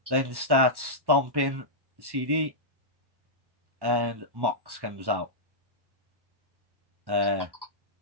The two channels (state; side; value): late; left; 1.1 ms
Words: Then starts stomping CD. And Mox comes out.